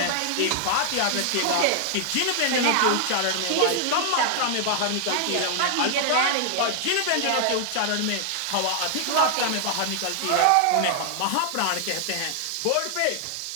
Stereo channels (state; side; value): different; both; correlation 0.00